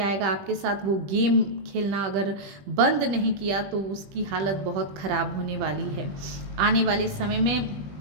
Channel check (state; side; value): late; left; 20 ms